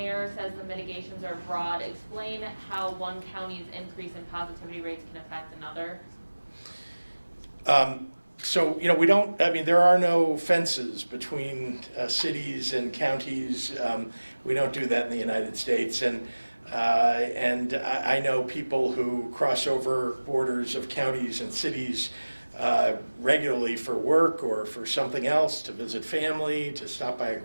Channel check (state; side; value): inverted; both; correlation -1.00